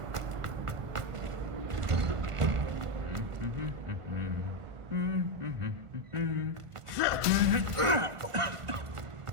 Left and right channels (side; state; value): left; late; 1.5 ms